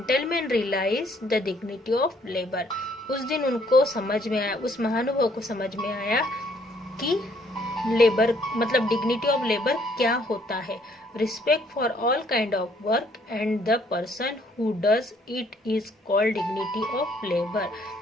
realise the dignity of labour. उस दिन उनको समझ में आया, उस महानुभाव को समझ में आया कि लेबर मतलब डिग्निटी ऑफ लेबर क्या होता है। Respect for all kind of work and the person who does it is called dignity of labour.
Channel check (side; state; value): both; normal; correlation 0.65